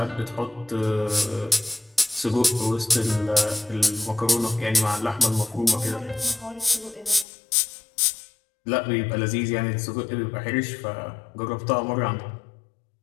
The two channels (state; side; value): drops out; right; at 7.2 s